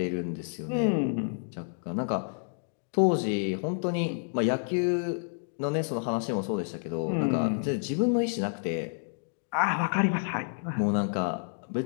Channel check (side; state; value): right; silent; digital silence